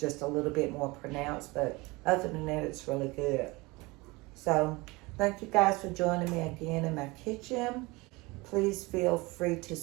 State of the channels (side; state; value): left; quieter; 23.7 dB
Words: a little bit more pronounced. But other than that, it's really good. So thank you guys for joining me again in my kitchen. Please feel free to